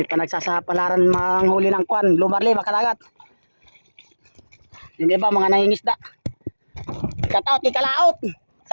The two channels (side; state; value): both; inverted; correlation -1.00